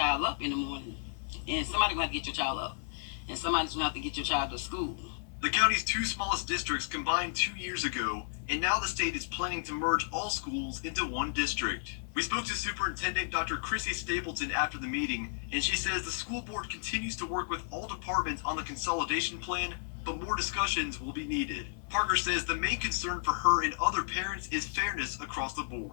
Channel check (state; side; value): silent; right; 56 dB below the other